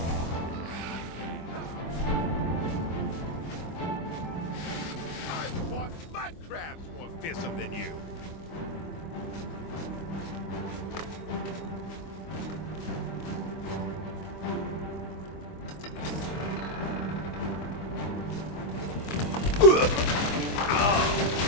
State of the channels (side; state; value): right; late; 24 ms